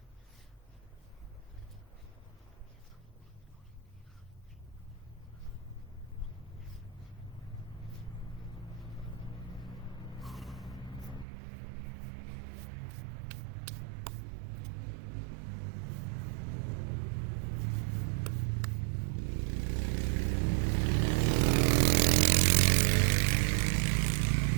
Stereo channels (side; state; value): left; drops out; at 11.2 s